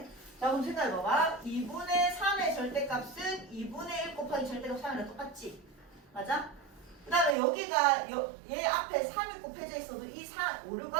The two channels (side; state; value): left; drops out; at 7.4 s